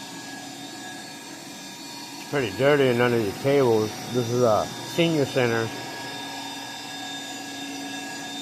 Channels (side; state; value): both; identical; correlation 1.00